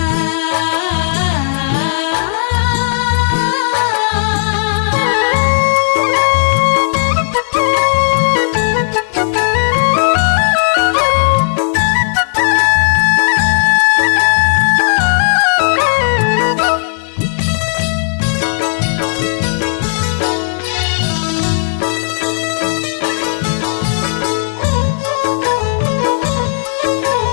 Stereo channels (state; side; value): silent; right; digital silence